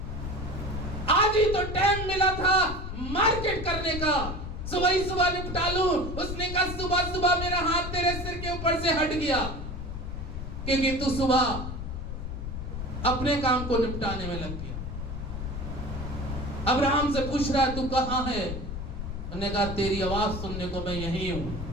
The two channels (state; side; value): noise; left; rumble, 6 dB below the sound